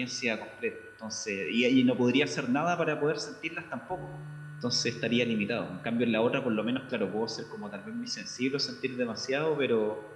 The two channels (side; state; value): both; identical; correlation 1.00